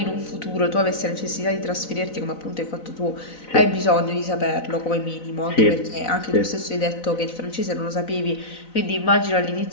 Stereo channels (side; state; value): right; late; 4.0 ms